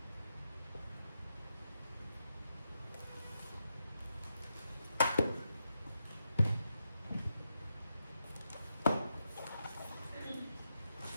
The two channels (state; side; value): inverted; both; correlation -0.85